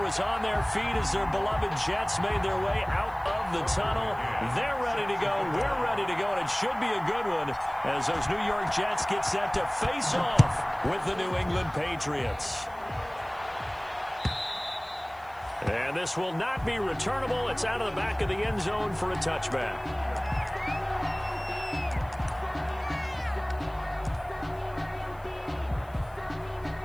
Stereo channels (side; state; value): left; noise; hiss, 28 dB below the sound